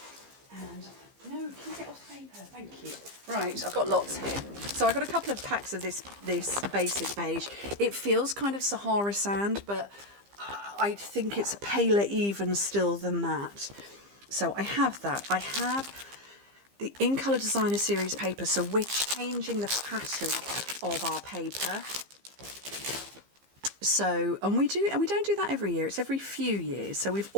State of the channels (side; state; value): left; late; 15 ms